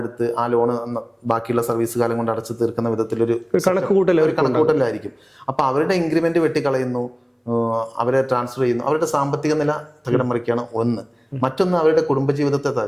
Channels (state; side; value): identical; both; correlation 1.00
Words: ആ ലോൺ ബാക്കിയുള്ള സർവീസ് കാലം കൊണ്ട് അടച്ചു തീർക്കുന്ന വിധത്തിലൊരു കണക്കുകൂട്ടലായിരിക്കും. അപ്പോൾ അവരുടെ ഇൻക്രിമെന്റ് വെട്ടിക്കളയുന്നു, അവരെ ട്രാൻസ്ഫർ ചെയ്യുന്നു. അവരുടെ സാമ്പത്തിക നില തകിടം മറിക്കുകയാണ് ഒന്ന്. മറ്റൊന്ന് അവരുടെ കുടുംബജീവിതത്തെ